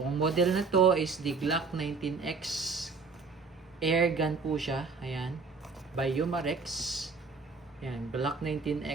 model na to is the Glock 19X Airgun po siya. Ayan. By Umarex. Ayan, Glock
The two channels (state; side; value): quieter; left; 4.6 dB